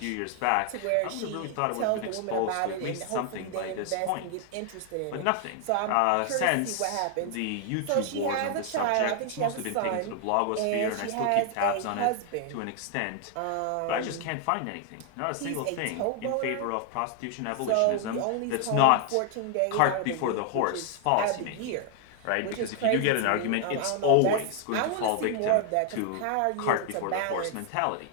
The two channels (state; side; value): different; both; correlation 0.00